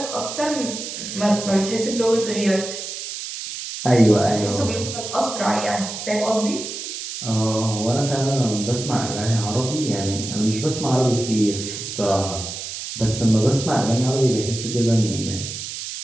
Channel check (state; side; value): noise; right; hiss, 7 dB below the sound